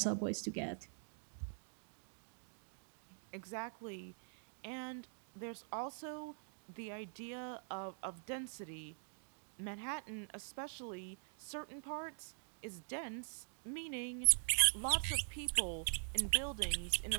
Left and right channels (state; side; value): silent; left; digital silence